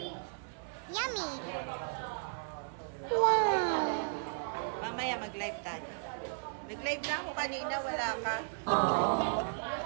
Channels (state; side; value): silent; left; 54 dB below the other